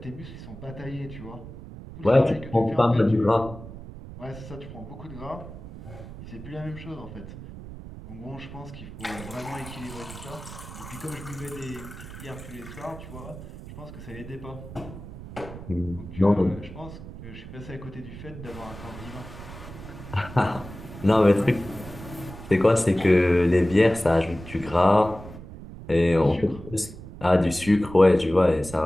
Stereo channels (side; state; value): right; noise; rumble, 13 dB below the sound